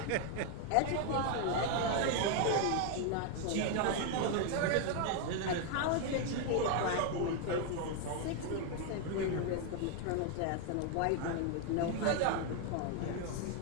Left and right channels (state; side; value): different; both; correlation 0.01